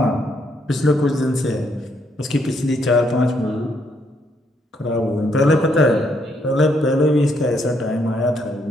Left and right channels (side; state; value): both; normal; correlation 0.73